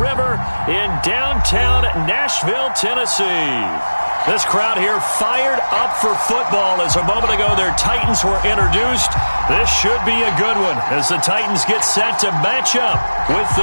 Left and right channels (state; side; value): inverted; both; correlation -1.00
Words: in downtown Nashville, Tennessee. This crowd here fired up for football as a moment ago their Titans were introduced. This should be a good one as the Titans get set to match up with